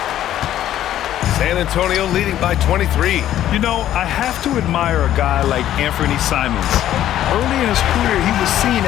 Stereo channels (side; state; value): right; quieter; 12.1 dB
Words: San Antonio leading by 23. You know, I have to admire a guy like Anthony Simons. Early in his career, he was seen